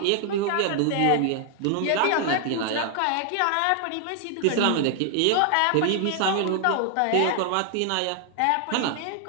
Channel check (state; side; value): different; both; correlation 0.00